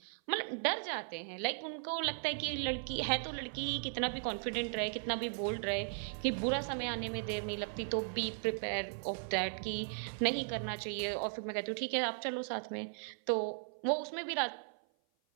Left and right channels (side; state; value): left; silent; 53 dB below the other